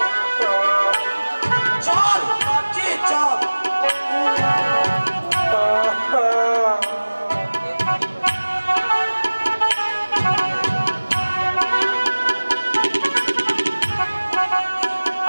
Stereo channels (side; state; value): both; inverted; correlation -1.00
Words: চল বাচ্চি চল